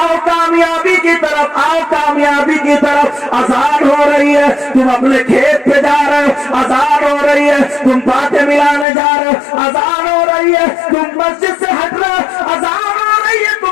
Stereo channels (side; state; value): right; drops out; at 8.8 s